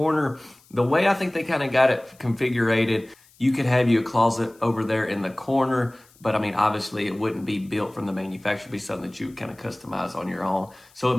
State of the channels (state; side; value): noise; left; hiss, 29 dB below the sound